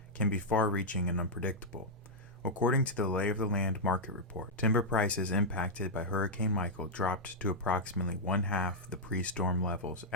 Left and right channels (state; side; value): normal; both; correlation -0.06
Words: can be far-reaching and unpredictable. According to the Lay of the Land market report, timber prices impacted by Hurricane Michael dropped to approximately one-half the pre-storm levels